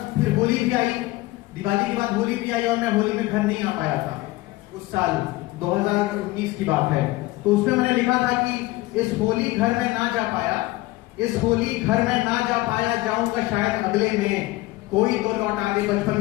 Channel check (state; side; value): quieter; right; 19.1 dB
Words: फिर होली भी आई, दिवाली के बाद होली भी आई और मैं होली में घर नहीं आ पाया था उस साल, 2019 की बात है। तो उसमें मैंने लिखा था कि इस होली घर में ना जा पाया, इस होली घर में ना जा पाया, जाऊंगा शायद अगले में, कोई तो लौट आ गए बचपन